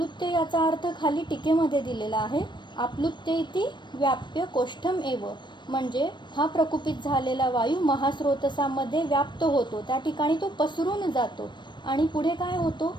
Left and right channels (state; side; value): late; right; 0.22 ms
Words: याचा अर्थ खाली टीकेमध्ये दिलेला आहे. आप्लुत्य इति व्याप्य कोष्ठम एव. म्हणजे हा प्रकुपित झालेला वायू महास्रोतसामध्ये व्याप्त होतो त्या ठिकाणी तो पसरून जातो आणि पुढे काय होतो